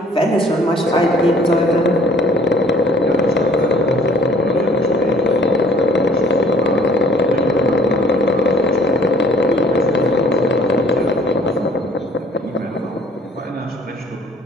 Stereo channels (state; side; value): normal; both; correlation 0.55